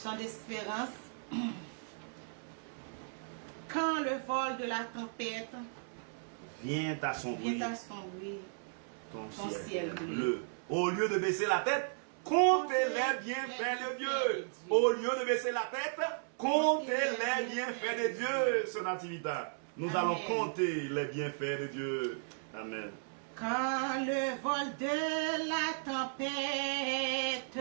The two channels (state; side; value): silent; left; 54 dB below the other